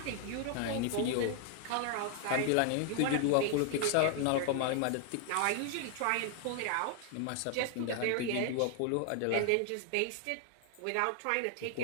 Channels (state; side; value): different; both; correlation 0.00